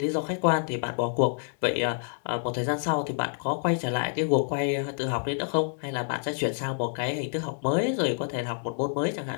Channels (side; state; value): right; silent; digital silence